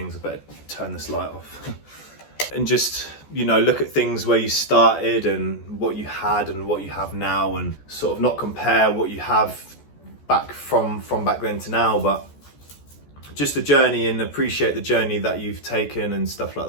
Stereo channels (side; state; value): right; late; 14 ms